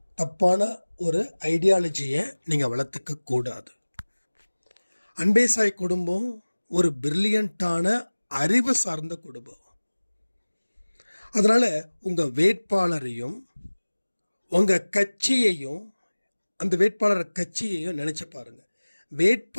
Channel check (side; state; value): both; inverted; correlation -1.00